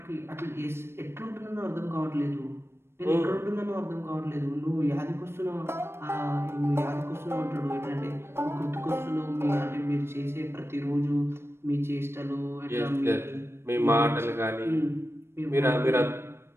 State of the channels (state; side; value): late; left; 0.12 ms